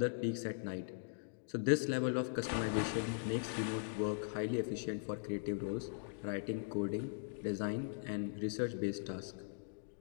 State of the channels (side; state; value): right; silent; digital silence